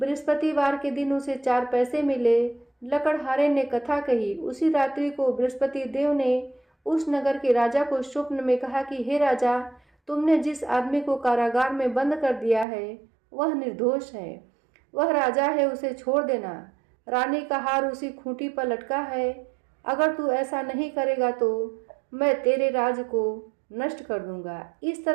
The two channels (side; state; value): left; drops out; at 12.7 s